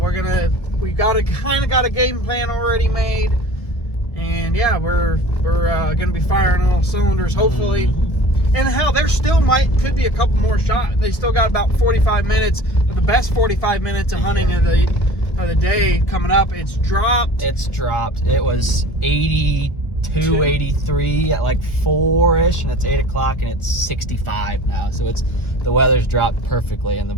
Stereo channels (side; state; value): right; late; 1.3 ms